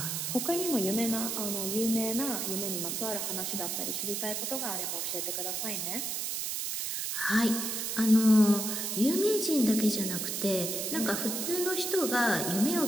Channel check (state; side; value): noise; right; hiss, 2 dB below the sound